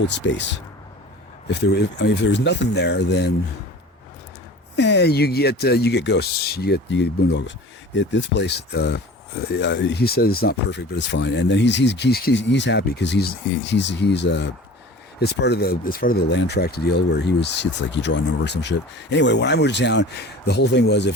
space. If there was nothing there, then you get ghosts. You get boondoggles. This place. He says it's not perfect, but it's fine. And then he's happy because he's it's part of the land tract deal where it's like you draw a number or some shit. Anyway, when I moved to town, the whole thing was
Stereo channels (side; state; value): both; normal; correlation 0.41